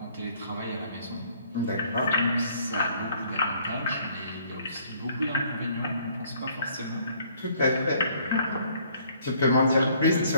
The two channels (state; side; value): inverted; both; correlation -0.62